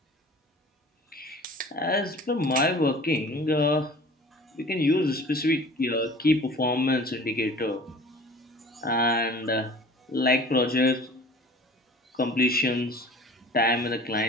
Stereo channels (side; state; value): both; normal; correlation 0.44